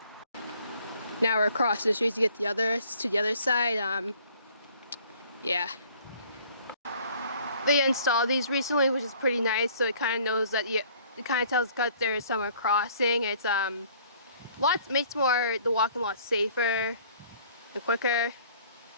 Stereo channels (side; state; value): both; inverted; correlation -0.56